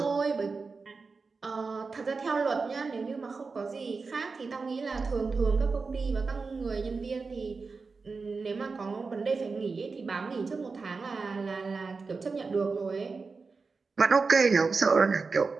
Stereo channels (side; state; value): left; quieter; 4.4 dB